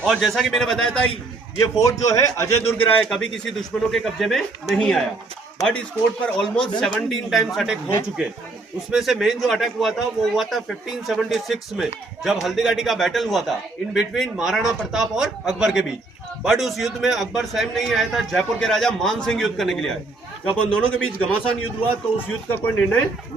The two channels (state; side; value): quieter; left; 3.4 dB